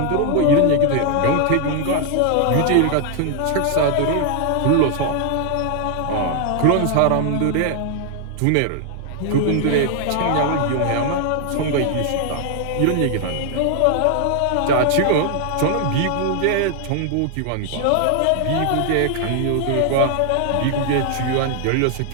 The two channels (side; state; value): both; different; correlation 0.00